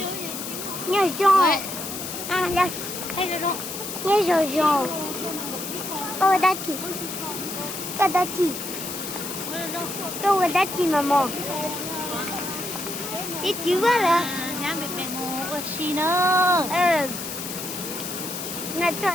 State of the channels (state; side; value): noise; left; hiss, 7 dB below the sound